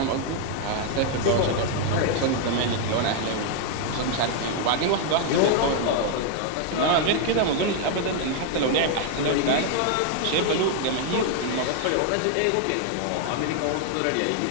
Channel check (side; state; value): both; different; correlation 0.00